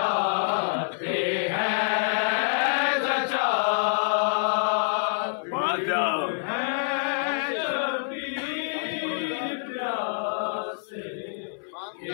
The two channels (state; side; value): silent; right; 58 dB below the other